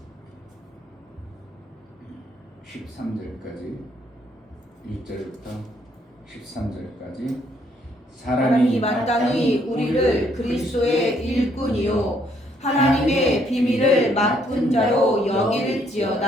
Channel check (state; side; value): normal; both; correlation 0.68